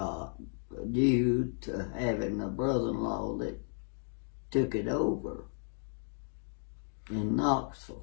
due to having a brother-in-law that took it over in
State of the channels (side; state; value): right; silent; 55 dB below the other